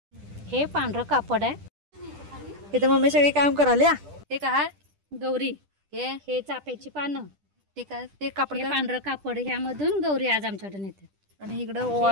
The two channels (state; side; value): late; left; 10 ms